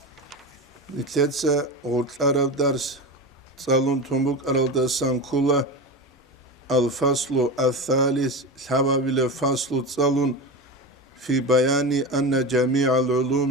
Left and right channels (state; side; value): normal; both; correlation 0.23